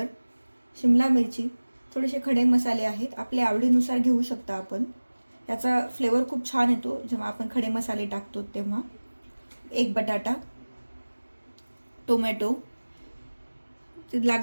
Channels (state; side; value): inverted; both; correlation -1.00